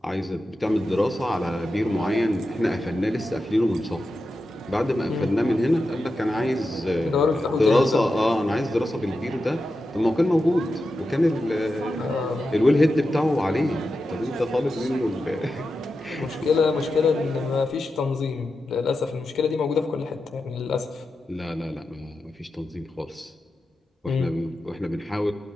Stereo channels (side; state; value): both; normal; correlation 0.90